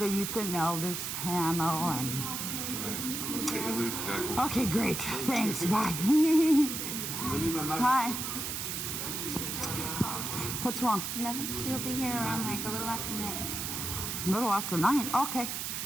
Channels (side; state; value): right; noise; hiss, 3 dB below the sound